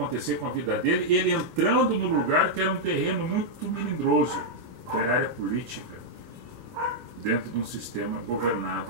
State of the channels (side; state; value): left; late; 25 ms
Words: com a vida dele, ele entrando no lugar que era um terreno muito melindroso, que era a área política, dentro de um sistema governado